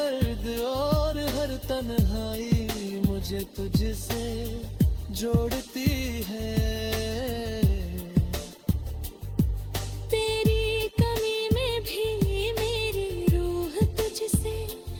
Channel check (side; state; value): both; identical; correlation 1.00